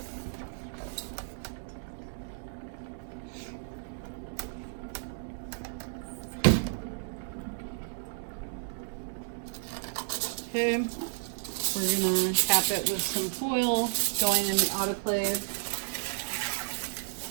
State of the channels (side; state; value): left; silent; 56 dB below the other